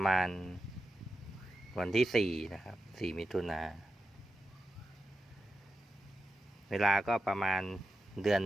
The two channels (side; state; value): both; normal; correlation 0.89